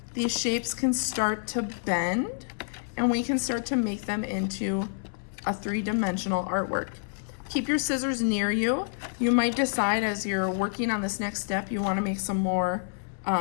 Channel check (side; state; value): right; silent; 59 dB below the other